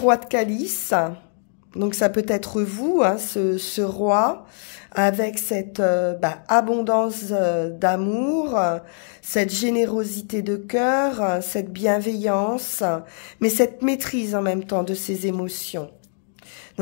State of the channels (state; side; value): silent; right; 58 dB below the other